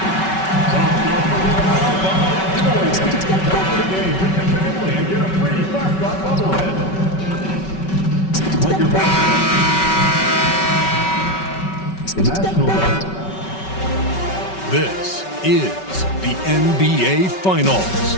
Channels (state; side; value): late; right; 5.3 ms